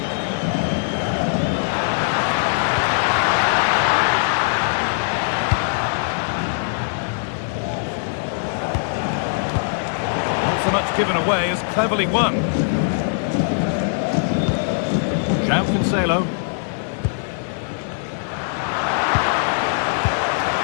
Not so much given away as cleverly won. João Cancelo.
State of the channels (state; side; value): silent; right; digital silence